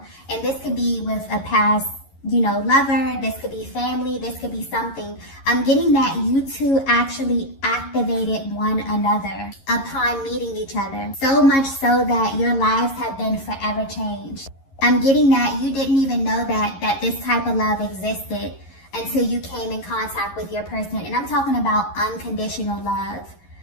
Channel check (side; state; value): right; late; 11 ms